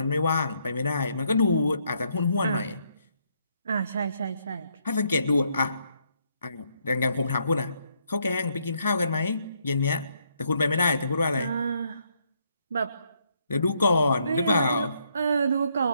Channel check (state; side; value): inverted; both; correlation -0.74